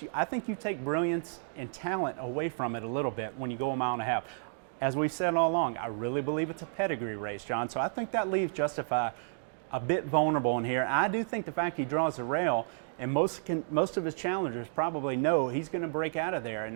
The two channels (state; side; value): silent; left; digital silence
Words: I think you take brilliance and talent away from it a little bit when you go a mile and a half. As we've said all along, I really believe it's a pedigree race, John. So I think that leaves Justify a bit vulnerable in here. I do think the fact he draws the rail, and most of his challengers probably know he's going to break out of there and